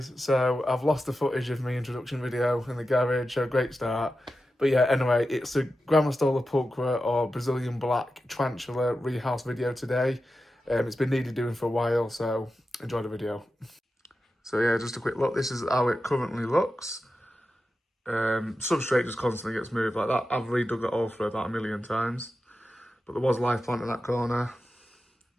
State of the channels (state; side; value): normal; both; correlation 0.91